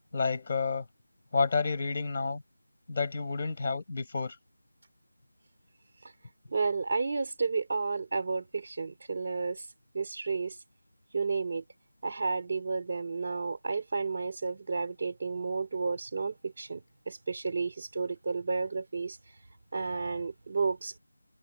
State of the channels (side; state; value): both; inverted; correlation -0.88